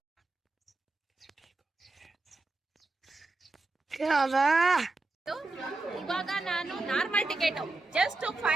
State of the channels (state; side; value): quieter; left; 3.0 dB